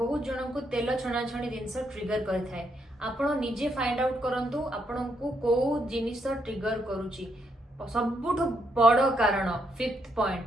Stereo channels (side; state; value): both; normal; correlation 0.77